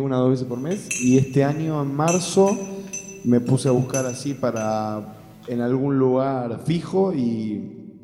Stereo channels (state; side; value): identical; both; correlation 1.00